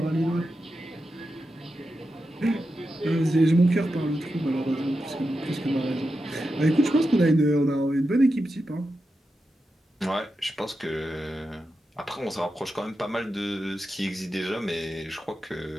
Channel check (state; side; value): normal; both; correlation 0.89